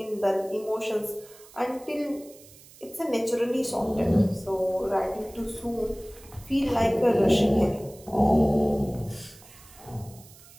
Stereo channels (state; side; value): noise; right; hiss, 22 dB below the sound